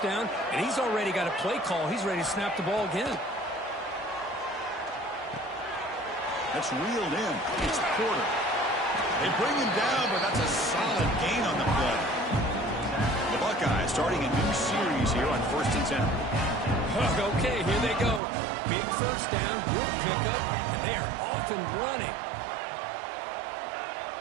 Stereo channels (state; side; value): drops out; left; at 18.2 s